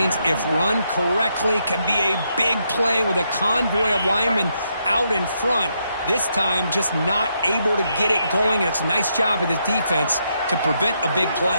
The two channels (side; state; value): both; inverted; correlation -0.78